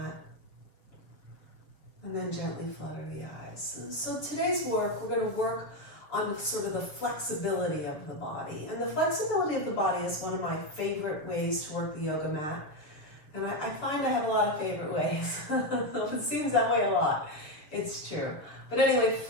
and then gently flutter the eyes. So today's work, we're going to work on sort of the flexibility of the body. And the flexibility of the body is one of my favorite ways to work the yoga mat. And I find I have a lot of favorite ways. It seems that way a lot. It's true. But anyway,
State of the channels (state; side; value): late; right; 7.0 ms